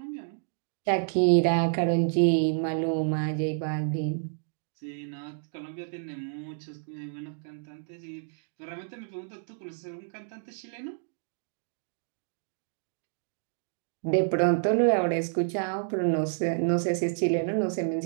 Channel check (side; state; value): left; silent; digital silence